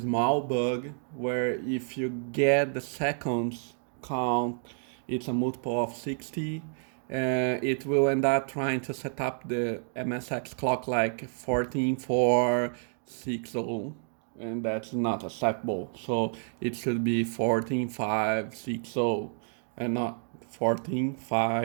bug where if you get the seconds count, it's a multiple of 60. It will end up trying to set up the MSX clock like 14460, and that's not acceptable. So it should be 14.560 and not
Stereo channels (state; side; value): silent; left; 56 dB below the other